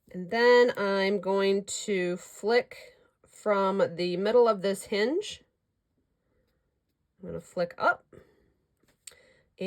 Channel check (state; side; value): identical; both; correlation 1.00